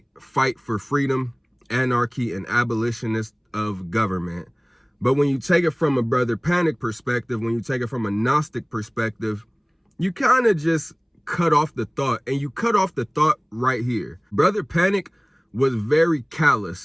fight for freedom, anarchy, and abolitionist of government. But when you take it from a Brother Panic perspective, when you take it from a Gnostic perspective, you kind of just cut off the thought, and you cut off the thought right here. Brother Panic was very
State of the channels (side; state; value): both; identical; correlation 1.00